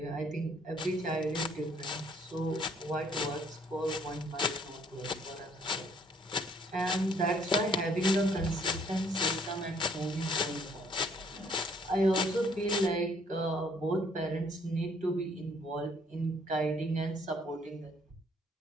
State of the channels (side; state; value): both; normal; correlation 0.64